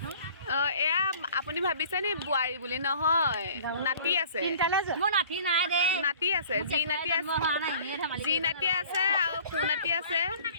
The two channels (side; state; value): both; inverted; correlation -0.49